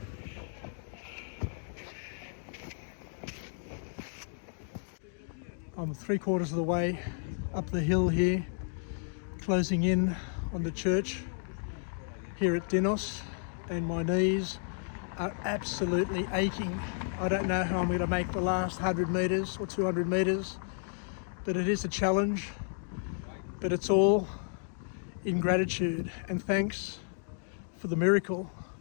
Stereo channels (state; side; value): silent; right; digital silence